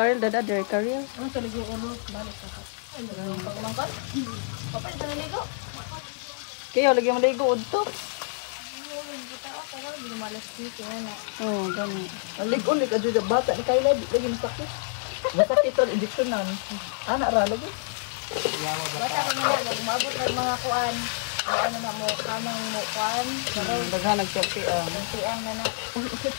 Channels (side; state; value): right; silent; 60 dB below the other